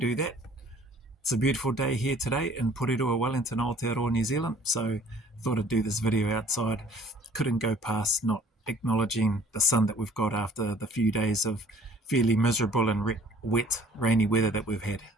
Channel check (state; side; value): normal; both; correlation 0.54